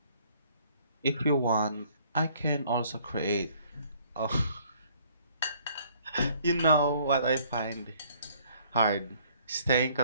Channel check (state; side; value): inverted; both; correlation -0.60